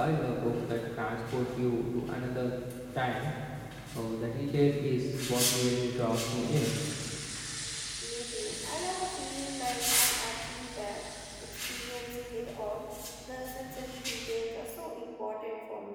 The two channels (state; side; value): identical; both; correlation 1.00